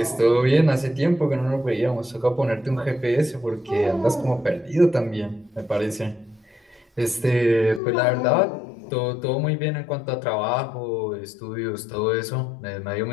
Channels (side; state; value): right; drops out; at 7.8 s